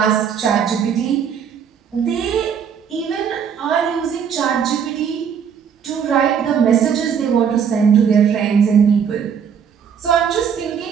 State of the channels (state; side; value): quieter; left; 7.5 dB